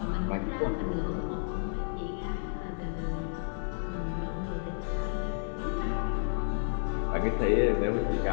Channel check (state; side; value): silent; right; digital silence